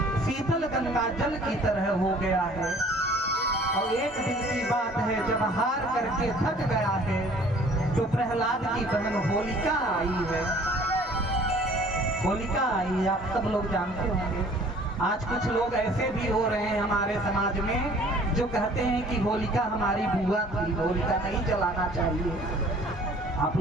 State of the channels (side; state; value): both; normal; correlation 0.52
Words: शीतल गंगा जल की तरह हो गया है। और एक दिन की बात है, जब हार करके थक गया है तो प्रहलाद की बहन होलिका आई है। होलिका आई है, आप सब लोग जानते होंगे। आज कुछ लोग ऐसे भी हो रहे हैं हमारे समाज में जो कहते हैं कि होलिका हमारी बुआ थी, होलिका नहीं जलाना चाहिए। आप